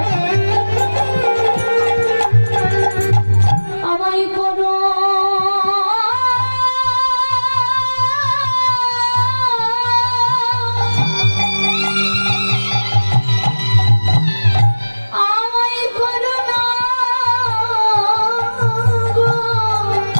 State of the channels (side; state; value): both; inverted; correlation -1.00